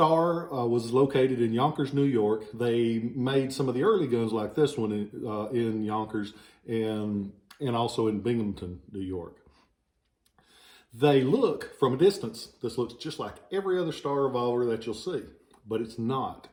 was located in Yonkers, New York. They made some of the early guns like this one in Yonkers and also in Binghamton, New York. They look, from a distance, this looks just like every other Starr revolver that you'll see, but it's not.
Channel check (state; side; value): identical; both; correlation 1.00